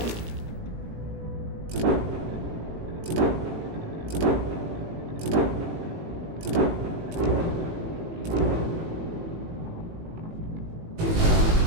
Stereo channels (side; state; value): left; late; 18 ms